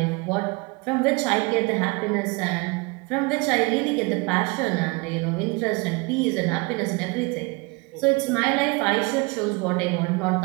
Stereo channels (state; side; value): quieter; left; 27.7 dB